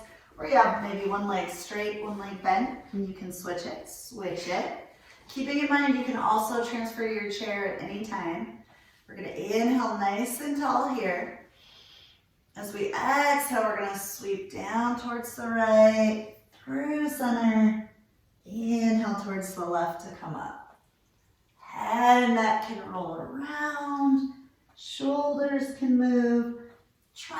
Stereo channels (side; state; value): both; identical; correlation 1.00